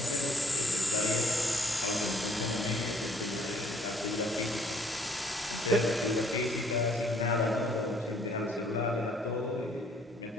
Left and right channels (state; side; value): normal; both; correlation 0.62